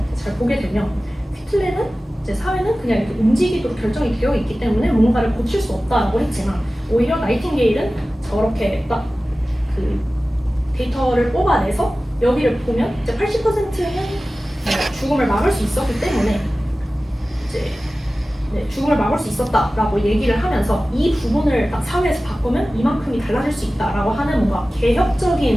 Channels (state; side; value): normal; both; correlation 0.96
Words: 잘 보게 되면 퀴틀레는 이제 사회는 그냥 이렇게 움직이도록 결정이 되어 있기 때문에 뭔가를 고칠 수 없다라고 했지만 오히려 나이팅게일은 저렇게 딱 그 데이터를 뽑아내서 여기를 보면 이제 80%는 죽음을 막을 수 있었기 때문에 이제 죽음을 막을 수 있었다라고 얘기를 하면서 이 부분을 딱 사회에서 바꾸면 이만큼이 달라질 수 있다라고 하는 뭔가